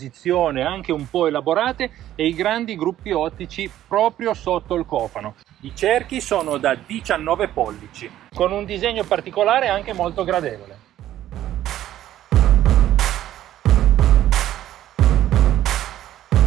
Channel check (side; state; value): left; quieter; 12.7 dB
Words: anche un po' elaborate e i grandi gruppi ottici proprio sotto il cofano. I cerchi sono da 19 pollici, con un disegno particolare anche molto gradevole.